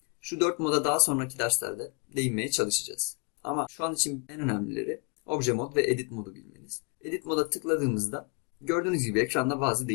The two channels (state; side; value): quieter; right; 32.6 dB